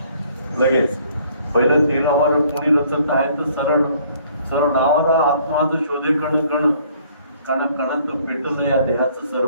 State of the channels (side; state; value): both; inverted; correlation -0.60